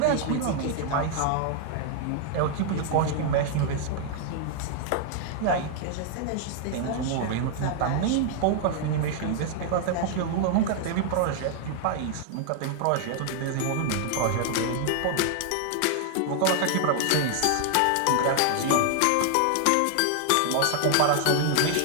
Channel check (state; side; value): different; both; correlation 0.00